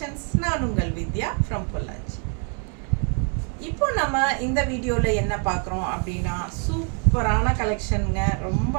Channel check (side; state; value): left; quieter; 39.6 dB